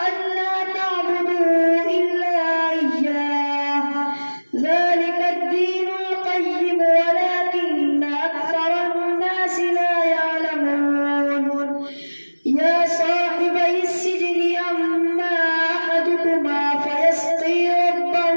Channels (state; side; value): inverted; both; correlation -1.00